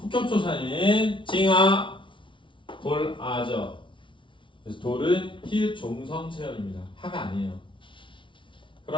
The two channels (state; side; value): late; right; 0.24 ms